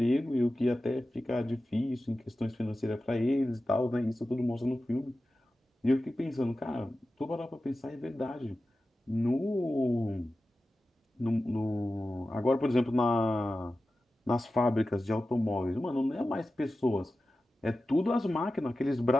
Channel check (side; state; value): both; normal; correlation 0.94